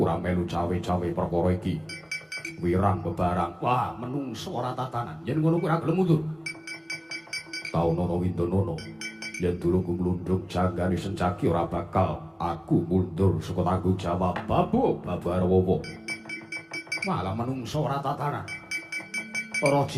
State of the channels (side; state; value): both; identical; correlation 1.00